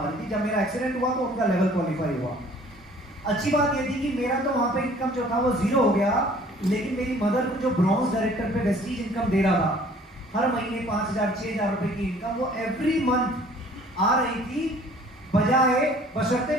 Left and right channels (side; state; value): both; normal; correlation 0.53